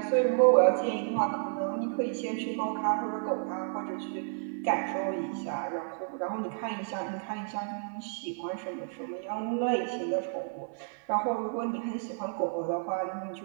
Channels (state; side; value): silent; left; 57 dB below the other